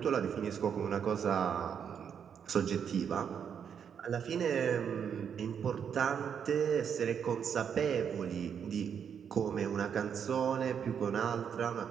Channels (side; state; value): left; quieter; 7.7 dB